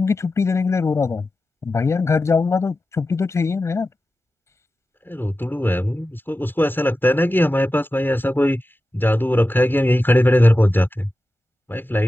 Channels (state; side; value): normal; both; correlation 0.93